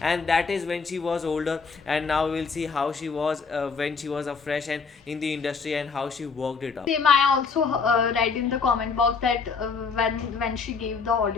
and that is when she was older, and now we'll see how she was when she was a fresh and in the industry, and how she worked it up. Same, I also read in the comment box that when she gave the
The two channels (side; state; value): right; quieter; 5.1 dB